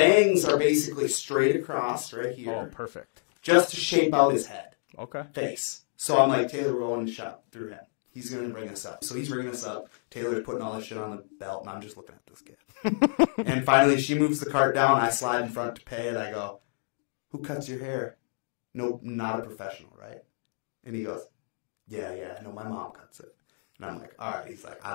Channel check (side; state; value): right; silent; 59 dB below the other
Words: are basically straight across right here, Oh, perfect. just to shape out his head. Okay. Face. So I'm like, Taylor, we're going to shop through him. He's going to bring us up. So he's bringing us up. Taylor's putting all this shit on the belt, and I'm just looking at this kid. And finally, she moves the cart down. I slide in front to pay it. I go, who cuts your hair? No, not a professional, right? And he goes, yeah, no, my mom cuts it. And I'm like, all right. He's like, I